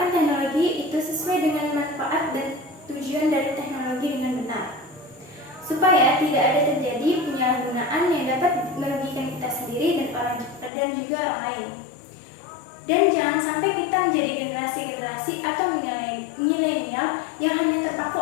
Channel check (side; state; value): right; drops out; at 10.7 s